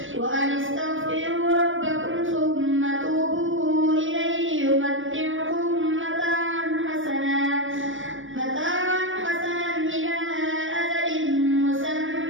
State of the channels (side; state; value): left; late; 0.57 ms